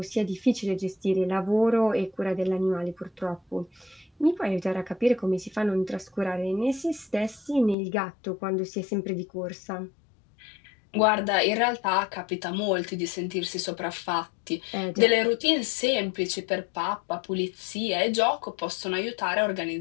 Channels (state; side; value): drops out; right; at 7.8 s